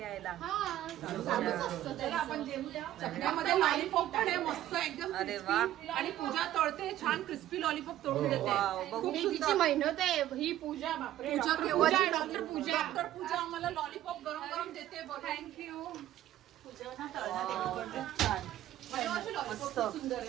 चालूच असतं. त्याला आपण जेवूया. चकण्यामध्ये लॉलीपॉप पण आहे मस्त एकदम. अरे वा. आणि पूजा तळते छान क्रिस्पी लॉलीपॉप तळून देते. वाव, बघू तिची सुद्धा. मेहनत आहे ही पूजा. बापरे पूजा पूजा केव्हाची डॉक्टर पूजा. डॉक्टर पूजा आम्हाला लॉलीपॉप गरम गरम देते. थँक्यू. मस्त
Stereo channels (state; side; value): quieter; left; 13.3 dB